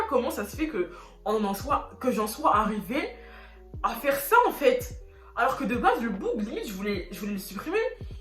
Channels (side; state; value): both; identical; correlation 1.00